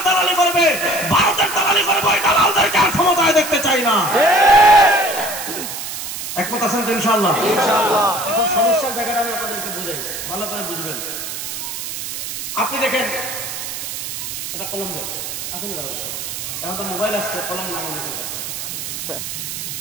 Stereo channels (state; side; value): noise; right; hiss, 6 dB below the sound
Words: দালালি করবে, ভারতের দালালি করবে, ওই দালালদেরকে আর ক্ষমতায় দেখতে চাই না। একমত আছেন তো? ইনশাআল্লাহ। এখন সমস্যার জায়গাটা আমি আপনাদেরকে বুঝাই, ভালো করে বুঝবেন। আপনি দেখেন, এটা কলম দেন আছে না? এখন তো মোবাইল আসছে, কলম নাই অনেকের কাছে।